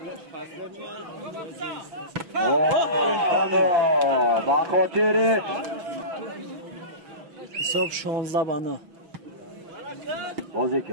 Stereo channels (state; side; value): late; left; 6.0 ms